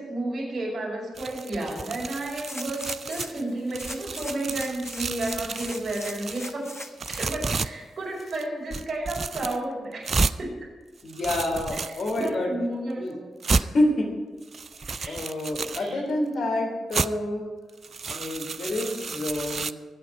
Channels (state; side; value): normal; both; correlation 0.86